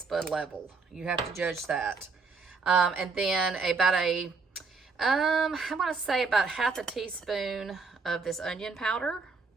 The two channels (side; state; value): left; quieter; 4.5 dB